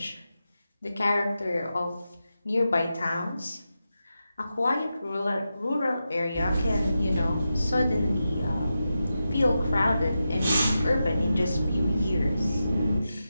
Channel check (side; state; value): both; inverted; correlation -0.90